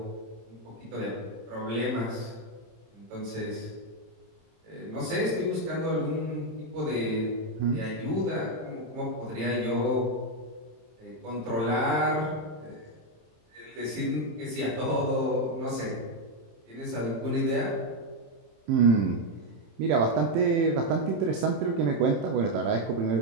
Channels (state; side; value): late; left; 27 ms